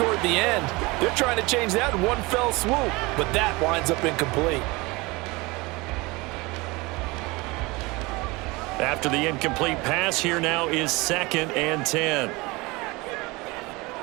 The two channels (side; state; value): left; quieter; 24.0 dB